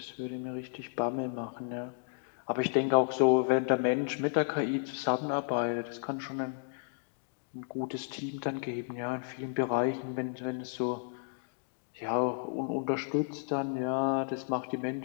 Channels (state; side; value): silent; right; digital silence